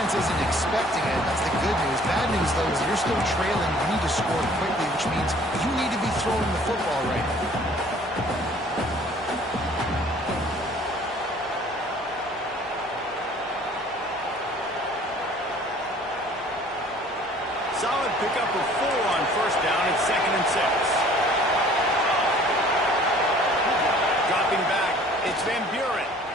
isn't expecting it. That's the good news. Bad news, though, is you're still trailing. You need to score quickly, which means you need to be throwing the football right now. Solid pickup of 4 on 1st down and 2nd and 6. Dropping back, it's Van Buren.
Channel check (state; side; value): normal; both; correlation 0.53